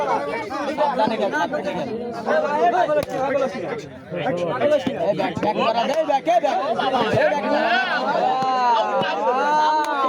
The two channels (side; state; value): both; identical; correlation 1.00